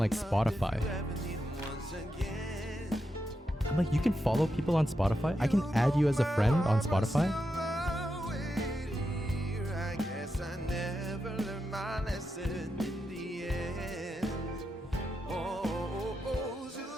Spotify. I'm like, you can follow people on Spotify? I can add you as a friend on Spotify?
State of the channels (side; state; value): both; normal; correlation 0.87